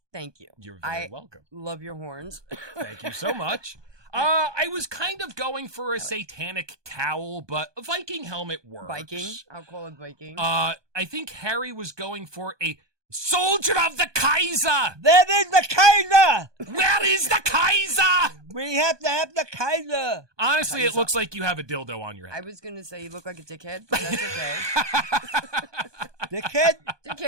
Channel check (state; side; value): late; left; 1.2 ms